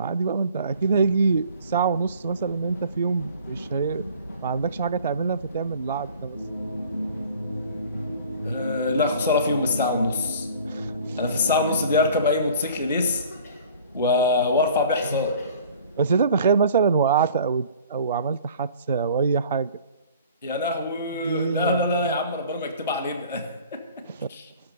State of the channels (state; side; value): inverted; both; correlation -0.49